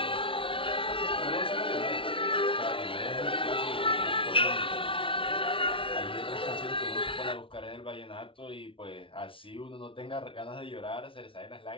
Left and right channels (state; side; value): late; right; 0.25 ms